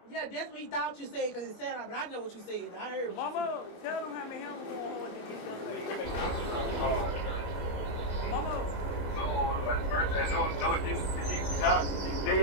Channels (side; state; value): right; late; 23 ms